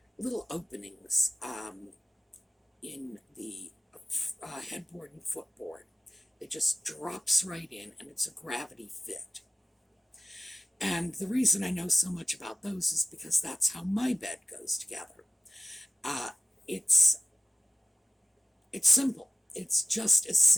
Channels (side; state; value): both; normal; correlation 0.95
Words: little openings in the headboard and footboard. It just drops right in, and it's a gravity fit. And the reason I know so much about those is because that's how my bed goes together. It's simple. It's just as